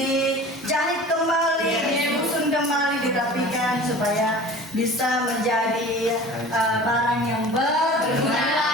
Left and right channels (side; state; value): both; normal; correlation 0.41